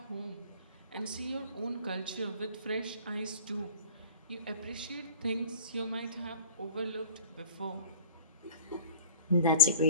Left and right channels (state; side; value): inverted; both; correlation -0.40